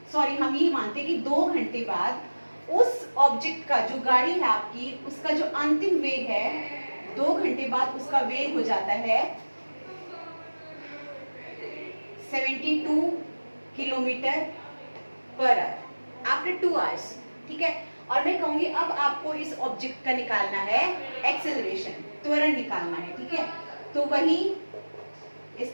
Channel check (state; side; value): inverted; both; correlation -1.00